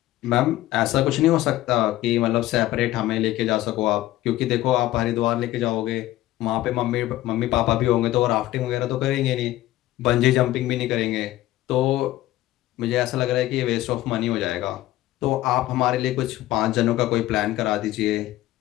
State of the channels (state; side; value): quieter; right; 15.5 dB